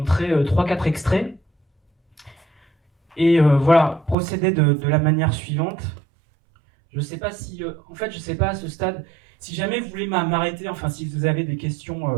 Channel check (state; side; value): drops out; left; at 4.2 s